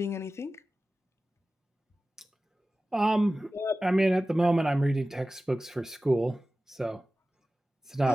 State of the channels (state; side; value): normal; both; correlation 0.96